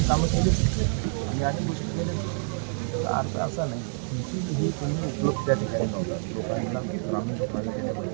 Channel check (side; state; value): left; silent; 60 dB below the other